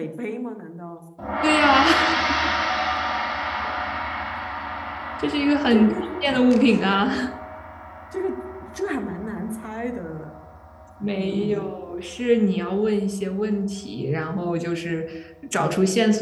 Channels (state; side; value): identical; both; correlation 1.00